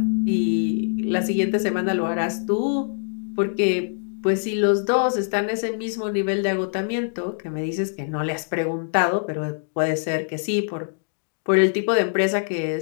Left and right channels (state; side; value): silent; right; digital silence